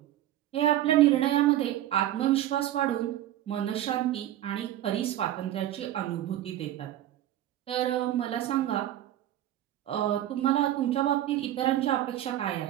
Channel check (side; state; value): left; quieter; 13.0 dB